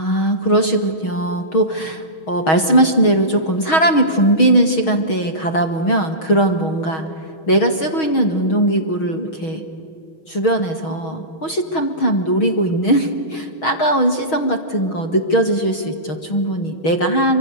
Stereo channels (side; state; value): right; late; 6.3 ms